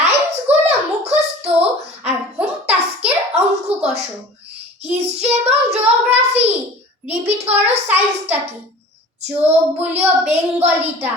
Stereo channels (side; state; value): both; normal; correlation 0.42